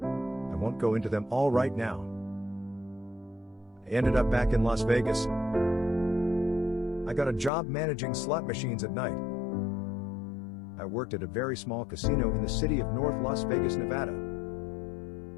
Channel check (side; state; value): right; drops out; at 7.5 s